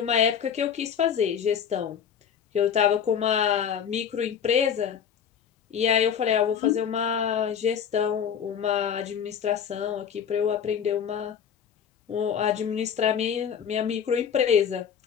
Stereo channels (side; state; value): right; quieter; 8.0 dB